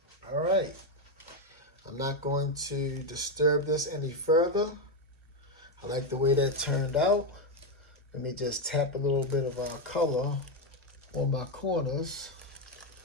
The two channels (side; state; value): both; normal; correlation 0.06